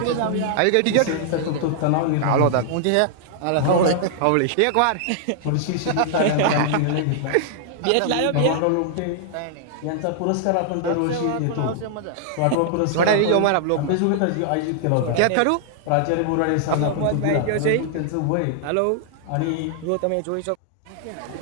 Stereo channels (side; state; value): both; different; correlation -0.01